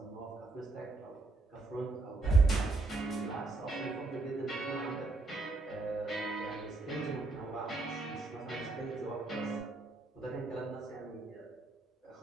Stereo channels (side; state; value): left; quieter; 3.3 dB